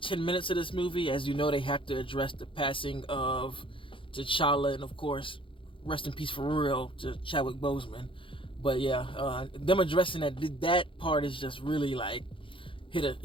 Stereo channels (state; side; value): late; right; 0.25 ms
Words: 10 minutes of this movie, as you know, they have to address the passing of T'Challa, and of course, rest in peace for real to Chadwick Boseman. But yeah, them addressing that part is just really like hit